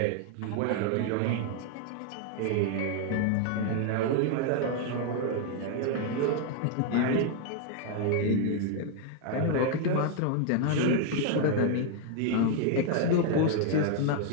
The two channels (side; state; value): both; different; correlation 0.00